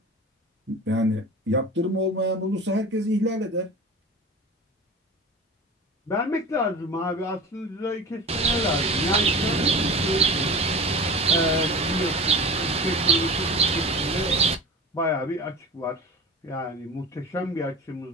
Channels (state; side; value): normal; both; correlation 0.34